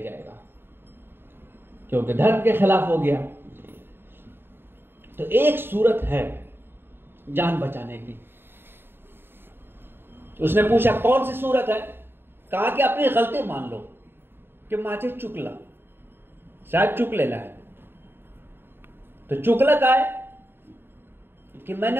क्योंकि धर्म के खिलाफ हो गया। तो एक सूरत है जान बचाने की। उसने पूछा कौन सी सूरत है? कहा कि अपनी गलती मान लो कि माचे चुकला, शायद चुक लेना है। तो चुकला का है कि मैंने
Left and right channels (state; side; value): late; left; 0.10 ms